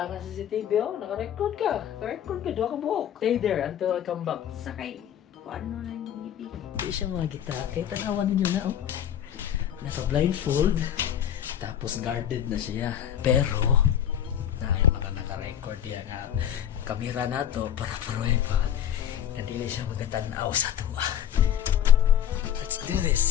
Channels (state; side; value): quieter; right; 10.0 dB